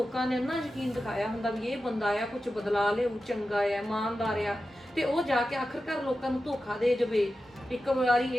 ਨੇ ਇੰਨਾ ਯਕੀਨ ਦਿਖਾਇਆ ਹੁੰਦਾ ਵੀ ਇਹ ਬੰਦਾ ਆ ਕੁਝ ਬਦਲਾ ਲਿਆਊ, ਚੰਗਾ ਆ, ਇਮਾਨਦਾਰ ਆ, ਤੇ ਉਹ ਜਾ ਕੇ ਆਖਰਕਾਰ ਲੋਕਾਂ ਨੂੰ ਧੋਖਾ ਦੇ ਜਾਵੇ। ਇੱਕ ਵਾਰੀ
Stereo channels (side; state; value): both; normal; correlation 0.92